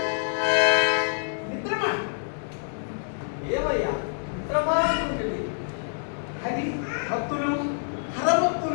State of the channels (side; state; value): right; silent; digital silence